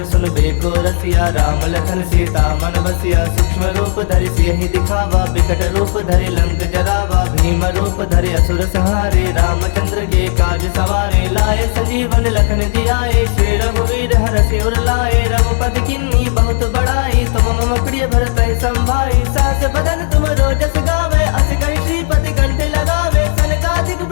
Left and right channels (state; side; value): silent; right; digital silence